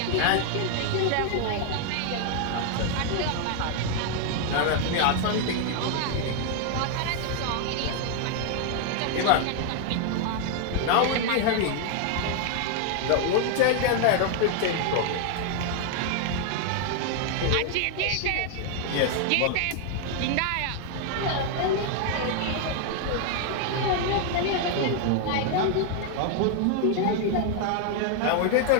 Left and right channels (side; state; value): both; different; correlation 0.00